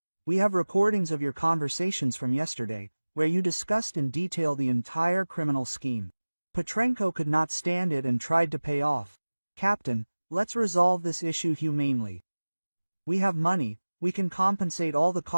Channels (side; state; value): both; inverted; correlation -1.00